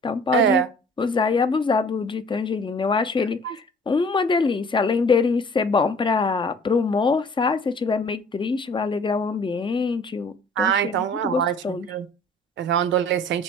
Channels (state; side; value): normal; both; correlation 0.51